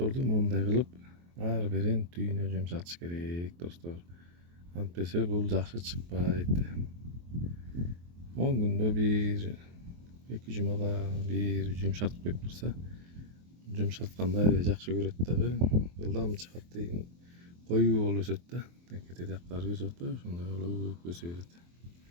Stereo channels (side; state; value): left; late; 23 ms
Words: моундай кылып ар бирин түйүнө жумшатыш керек, достор. Антпесе бул жакшы чыкпайт. 10 күндө бир, 2 жумада бир жумшартып коюп турса, жумшартканды аябай жакшы көрөт дагы. Жылдам чыгат деген коюу болуп өсөт да. Текете жактары өсүп атпайбы, ошондой болуп өсө берет.